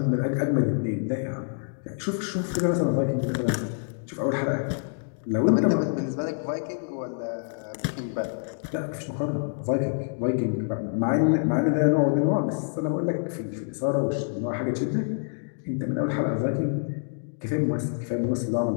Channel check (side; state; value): right; silent; digital silence